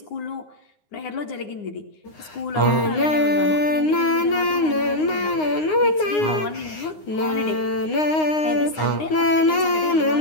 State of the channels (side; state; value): right; late; 9.7 ms